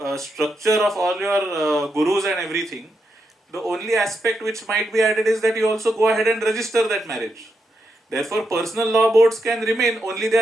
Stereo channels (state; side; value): normal; both; correlation 0.84